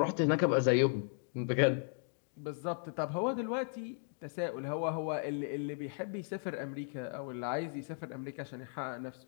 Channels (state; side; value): silent; right; 54 dB below the other